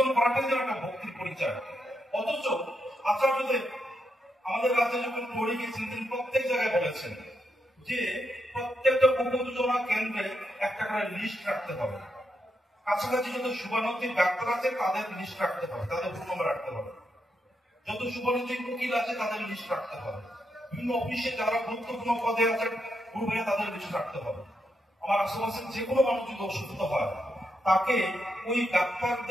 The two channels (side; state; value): both; normal; correlation 0.82